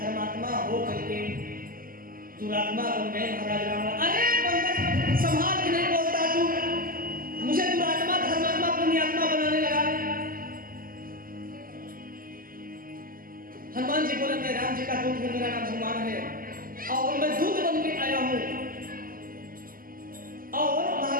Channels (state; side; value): late; left; 0.41 ms